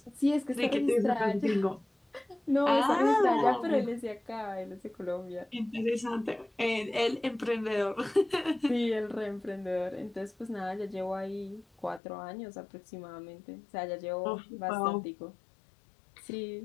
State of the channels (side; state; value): right; drops out; at 12.0 s